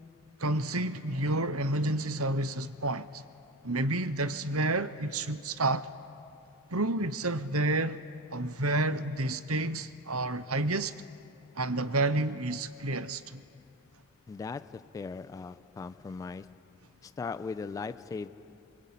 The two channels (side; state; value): both; normal; correlation 0.25